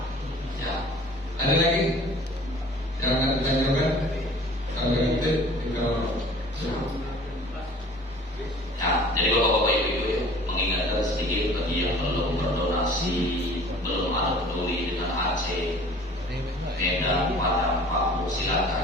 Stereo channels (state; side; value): normal; both; correlation 0.48